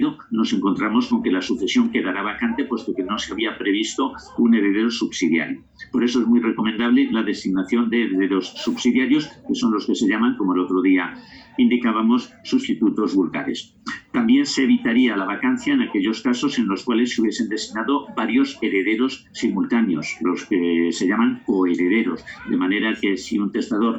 nos encontramos con que la sucesión quedará vacante, puesto que no se había previsto un heredero subsidiario. Por eso es muy recomendable la designación de herederos subsidiarios, que son los que se llaman, como el otro día indicábamos, sustitutos vulgares. También se evitaría la vacancia en aquellos casos en los cuales se hubiesen designado varios herederos simultáneos, los que se llaman coherederos, de manera que si un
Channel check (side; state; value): both; identical; correlation 1.00